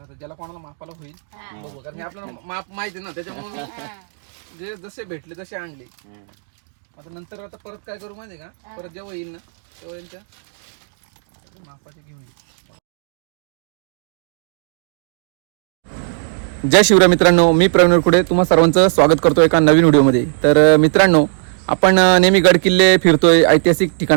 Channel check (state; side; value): silent; left; digital silence